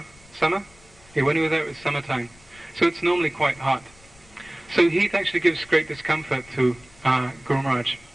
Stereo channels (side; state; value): left; noise; rumble, 26 dB below the sound